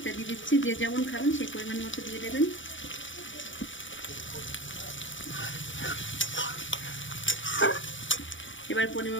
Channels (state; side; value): late; right; 0.56 ms